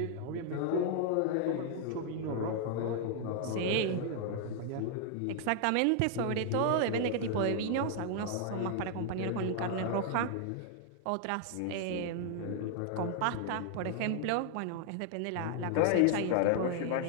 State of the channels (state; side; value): different; both; correlation 0.00